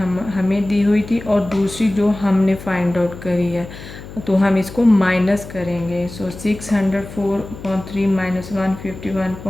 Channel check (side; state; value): left; noise; hum, 14 dB below the sound